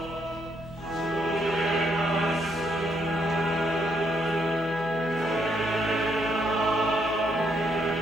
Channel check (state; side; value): noise; left; hum, 19 dB below the sound